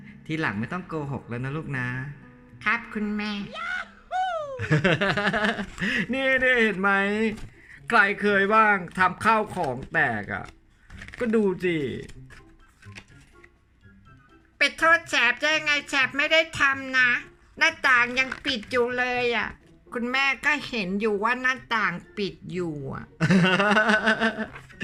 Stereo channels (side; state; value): both; identical; correlation 1.00